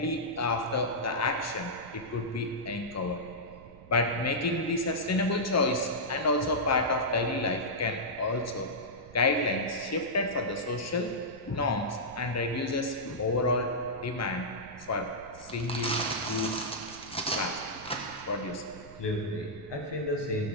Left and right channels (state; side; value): noise; right; rumble, 19 dB below the sound